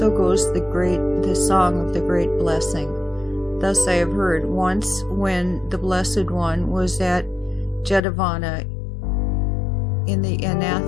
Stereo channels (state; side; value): drops out; right; at 8.0 s